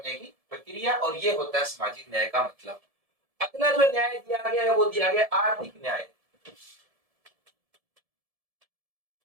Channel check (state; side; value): late; left; 1.7 ms